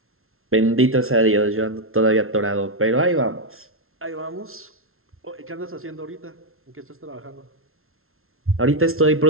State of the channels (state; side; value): late; left; 0.62 ms